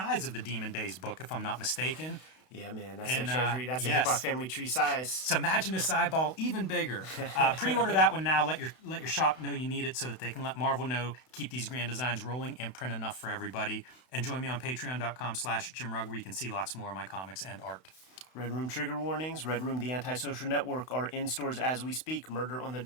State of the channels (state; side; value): late; right; 32 ms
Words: of the Demon Days book, if I'm not mistaken. Yeah, man, that's the Treasury. That's a hip-hop family tree size. So imagine this eyeball even bigger. Pre-order that one now. Let your shop know you need it so that they can let Marvel know, keep these grand designs rolling, and print enough for everybody. And join me on patreon.com/JimRugg, where you can see lots more of my comics and art. Red Room trigger warnings. Red Room, the antisocial network, are in stores as we speak. Murder on the